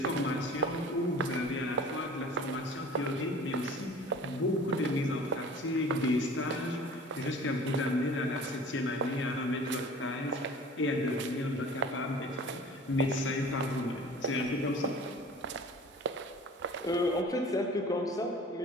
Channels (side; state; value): both; normal; correlation 0.44